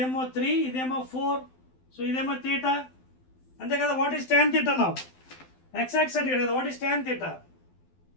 3, ఇదేమో 4, సో ఇదేమో తీటా అంతే కదా. What is tan theta now? x-axis అంటే కదా, what is tan theta?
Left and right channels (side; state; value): right; late; 12 ms